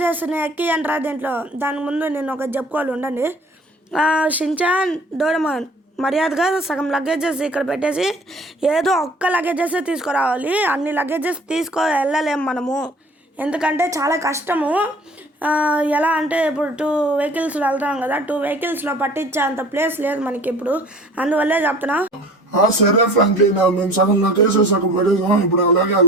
ఎక్కి అంటారా దీంట్లో. దాని ముందు నేను ఒక చెప్పుకోవాలి, ఉండండి. షించాన్, డోరేమాన్ మర్యాదగా సగం లగేజెస్ ఇక్కడ పెట్టేసి ఏదో ఒక్క లగేజెస్ తీసుకురావాలి. అన్ని లగేజెస్ వెళ్ళలేము మనము, ఎందుకంటే చాలా కష్టము. ఎలా అంటే ఇప్పుడు 2 వెహికల్స్లో వెళ్తాం కదా, 2 వెహికల్స్లో పట్టించే అంత ప్లేస్ లేదు మనకి ఇప్పుడు, అందువల్లే చెప్తున్నా. సరే ఫ్రాంక్లిన్, మేము సగం లగేజ్ సగం పెట్టేసాం, ఇప్పుడు అలాగే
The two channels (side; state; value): both; normal; correlation 0.48